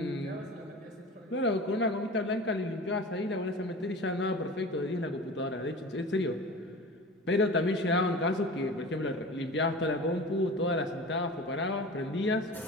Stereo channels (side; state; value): both; normal; correlation 0.35